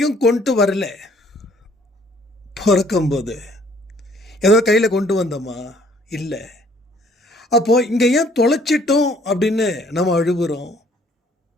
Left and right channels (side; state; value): both; normal; correlation 0.61